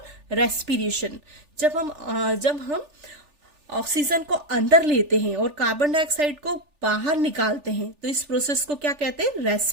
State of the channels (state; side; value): late; left; 3.4 ms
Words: respiration. जब हम oxygen को अंदर लेते हैं और carbon dioxide को बाहर निकालते हैं, तो इस प्रोसेस को क्या कहते हैं?